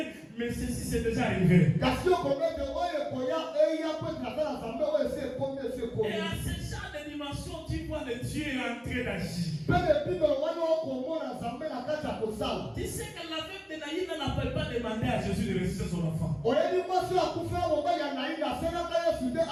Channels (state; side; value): identical; both; correlation 1.00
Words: mais ceci c'est déjà arrivé. Et à ce genre de dimension, tu vois le Dieu en train d'agir. Tu sais que la veuve de Naïm n'appelle pas demander à Jésus de ressusciter son enfant.